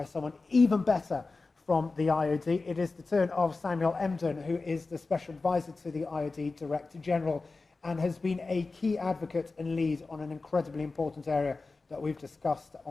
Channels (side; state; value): right; quieter; 3.8 dB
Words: someone even better from the IoD. It is the turn of Samuel Emden, who is the Special Advisor to the IoD Director General and has been a key advocate and lead on an incredibly important area that we've discussed